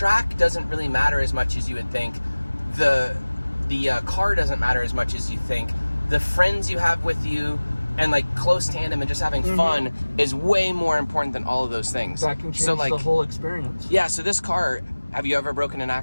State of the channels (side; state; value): both; inverted; correlation -1.00